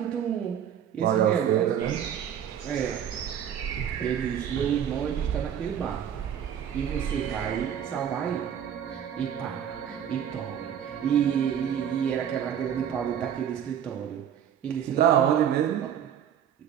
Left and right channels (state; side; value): quieter; left; 9.2 dB